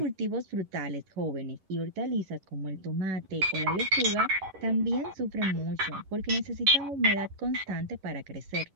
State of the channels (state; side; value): late; left; 11 ms